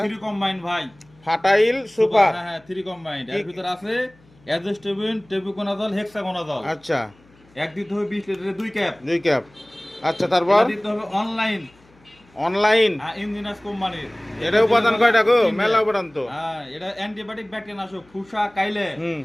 3 কম্বাইন ভাই। ফাটাইল সুপার। হ্যাঁ হ্যাঁ 3 কম্বাইন। এর ভিতর আছে অ্যাজোস্টেবিন, টেবুকোনাজল, হেক্সাগোনাজল। আচ্ছা, এক দিতে হবে 20 লিটারের 2 ক্যাপ। 2 ক্যাপ। আচ্ছা, তারপর এটা দিতে হবে অনলাইন। অনলাইন। ইঞ্জিনাস কোম্পানির। এটা উপাদান কয়টা গো? মেলা উপাদান তো। হ্যাঁ এটা অ্যান্টিবায়োটিক ব্যাকটেরিয়া নাশক, ফুসা কাইলে হুম।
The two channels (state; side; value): noise; left; hum, 30 dB below the sound